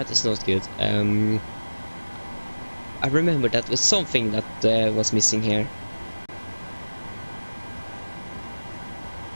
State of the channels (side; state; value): both; inverted; correlation -1.00